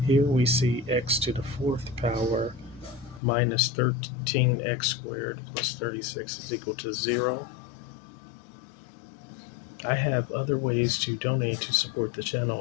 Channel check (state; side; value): drops out; right; at 3.2 s